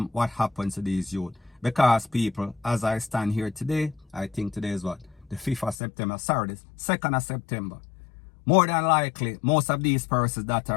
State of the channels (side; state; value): right; drops out; at 5.8 s